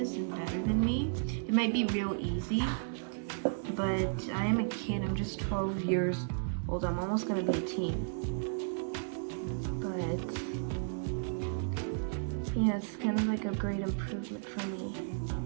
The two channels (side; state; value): left; silent; digital silence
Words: and better than me, it might be real easy. but I am a kid. I'm just 12 years old. I'm almost gonna be a teen. But yeah, it's kind of like a great improvement for me.